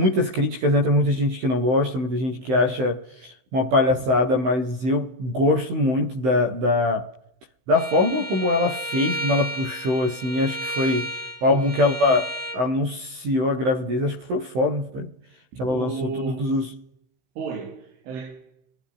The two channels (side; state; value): left; late; 16 ms